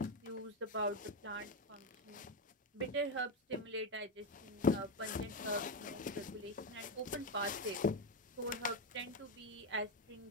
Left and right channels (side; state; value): both; normal; correlation 0.10